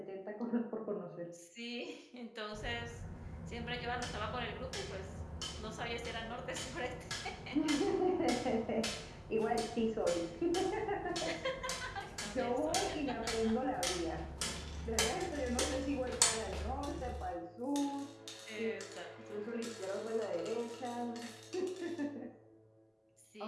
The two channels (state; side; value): identical; both; correlation 1.00